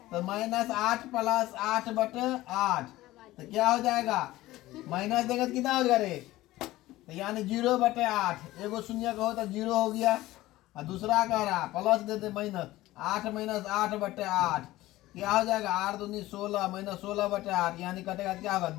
तो -8 + 8/8 तो क्या हो जाएगा? माइनस देगा तो कितना हो जाएगा रे? तो यानी 0/8। एगो शून्य का हो तो 0 हो गया, और दूसरा कह रहा प्लस देते -8 - 8/8 क्या हो जाएगा? 8 दूनी 16 -16/8 यानी कटेगा क्या होगा?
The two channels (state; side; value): quieter; right; 17.0 dB